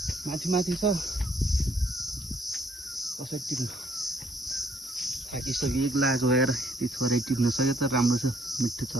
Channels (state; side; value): normal; both; correlation 0.67